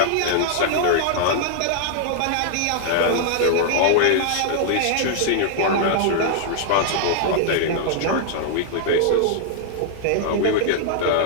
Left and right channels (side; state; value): both; different; correlation -0.01